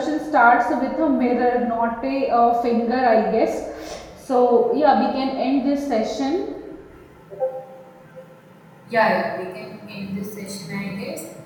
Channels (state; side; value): identical; both; correlation 1.00